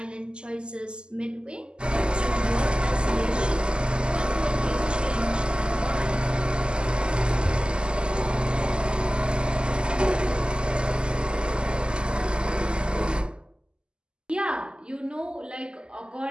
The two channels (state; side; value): late; left; 0.049 ms